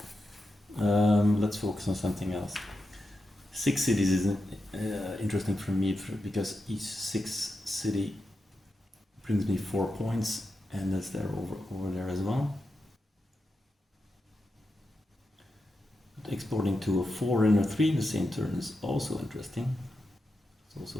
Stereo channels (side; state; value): both; normal; correlation 0.88